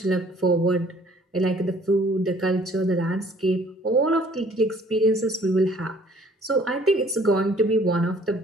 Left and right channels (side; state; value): both; normal; correlation 0.57